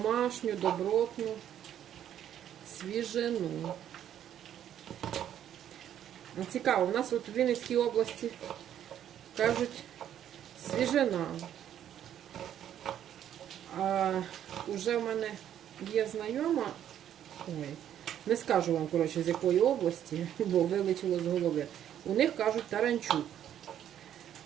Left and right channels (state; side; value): quieter; left; 10.4 dB